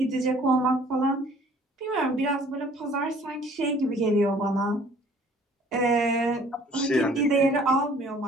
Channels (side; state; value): both; normal; correlation 0.55